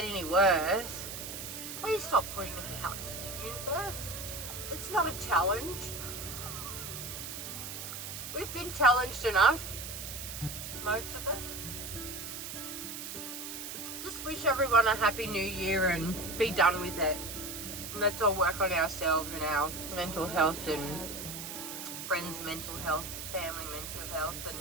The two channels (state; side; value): noise; right; hiss, 8 dB below the sound